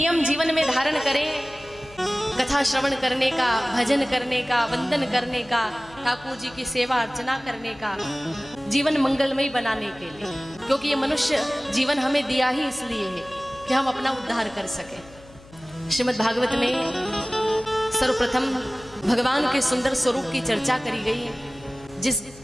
जीवन में धारण करें, कथा श्रवण करने का, भजन करने का, वंदन करने का, ठाकुर जी की सेवा अर्चना करने का, जीवन मंगलमय बनाने के लिए। क्योंकि ये मनुष्य जीवन हमें दिया ही इसलिए है कि हम अपना उद्धार कर सके। श्रीमद् भागवत में सर्वप्रथम भगवान के सुंदर स्वरूप की चर्चा करी गई है। जिस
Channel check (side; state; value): left; noise; hum, 23 dB below the sound